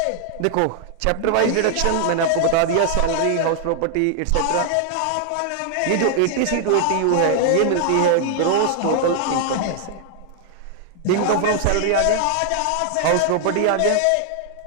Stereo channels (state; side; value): different; both; correlation 0.00